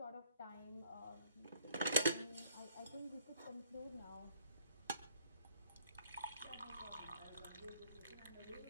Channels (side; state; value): both; inverted; correlation -0.63